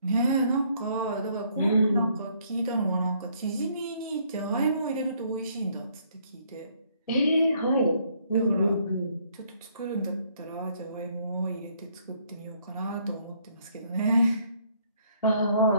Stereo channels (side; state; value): both; inverted; correlation -0.66